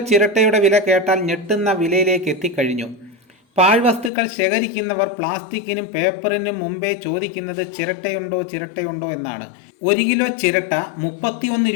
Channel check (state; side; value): drops out; right; at 4.1 s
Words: ചിരട്ടയുടെ വില കേട്ടാൽ ഞെട്ടുന്ന വിലയിലേക്ക് എത്തിക്കഴിഞ്ഞു. പാഴ്വസ്തുക്കൾ ശേഖരിക്കുന്നവർ പ്ലാസ്റ്റിക്കിനും പേപ്പറിനും മുമ്പേ ചോദിക്കുന്നത് ചിരട്ടയുണ്ടോ എന്നാണ്. 1 കിലോ ചിരട്ട 31